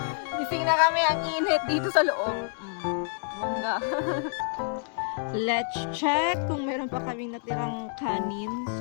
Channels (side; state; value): right; silent; digital silence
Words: Gising na kami ang init dito sa loob. Bunga. Let's check kung meron pa kaming natirang kanin.